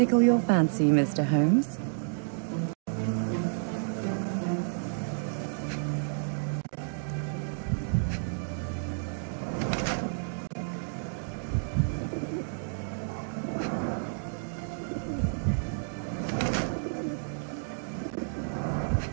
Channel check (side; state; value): left; silent; digital silence